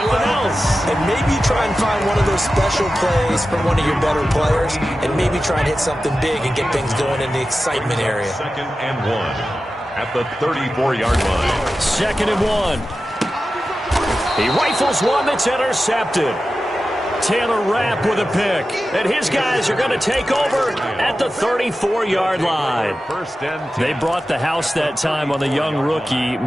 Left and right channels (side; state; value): both; normal; correlation 0.93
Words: well, else. and maybe try and find one of those special plays from one of your better players, and maybe try and hit something big and get things going in the excitement area. 2nd and 1 at the 34-yard line. 2nd and 1. He rifles one that's intercepted. Taylor Rapp with a pick. And his guys are going to take over at the 34-yard line. 1st and 10. They brought the house that time on the young rookie,